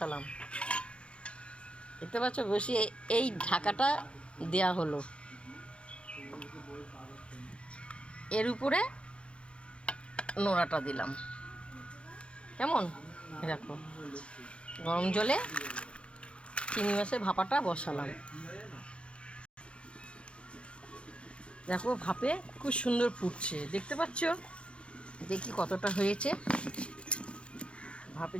দেখতে পাচ্ছ বেশি। এই ঢাকাটা দেয়া হলো, এর উপরে নোড়াটা দিলাম, কেমন। দেখো গরম জলে চিংড়ি মাছের ভাপাটা বসালাম, দেখো ভাপে খুব সুন্দর ফুটছে, দেখতে পাচ্ছ। দেখি কতটা হয়েছে, ভাপে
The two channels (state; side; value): late; right; 0.058 ms